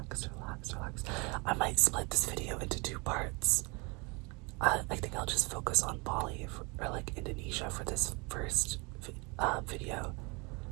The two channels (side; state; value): left; quieter; 29.1 dB